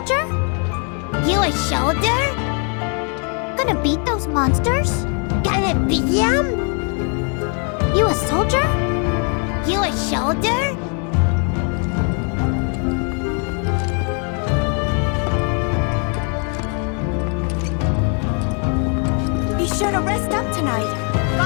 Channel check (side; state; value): right; quieter; 39.0 dB